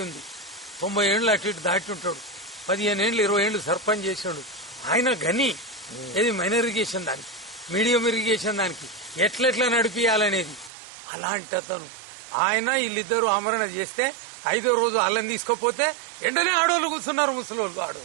ఉంది. 90 ఏళ్ళు అటు ఇటు దాటి ఉంటాడు. 15 ఏళ్ళు 20 ఏళ్ళు సర్పంచ్ చేసాడు. ఆయన గని. ఏది మైనర్ ఇరిగేషన్ దానికి, మీడియం ఇరిగేషన్ దానికి ఎట్లెట్లా నడిపియాలనేది. అలాంటి అతను ఆయన వీళ్ళిద్దరూ ఆమరణ చేస్తే 5వ రోజు అల్లం తీసుకోపోతే వెంటనే ఆడోళ్ళు కూర్చున్నారు, ముసలోళ్ళు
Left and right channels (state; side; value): drops out; left; at 10.7 s